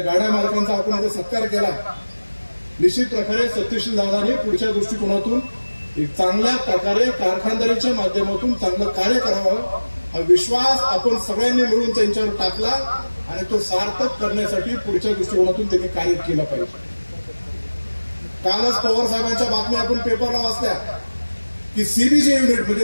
गाड्या मालकांचा आपण आता सत्कार केला. निश्चित प्रकारे सत्यशील दादांनी पुढच्या दृष्टिकोनातून एक चांगल्या प्रकारे कारखानदारीच्या माध्यमातून चांगलं कार्य करावं हा विश्वास आपण सगळ्यांनी मिळून त्यांच्यावर टाकला आणि तो सार्थक करण्यासाठी पुढच्या दृष्टिकोनातून त्यांनी कार्य केलं पाहिजे. कालच पवार साहेबांच्या बातम्या आपण पेपरला वाचल्या की सीबीजी युनिट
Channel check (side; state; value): both; inverted; correlation -1.00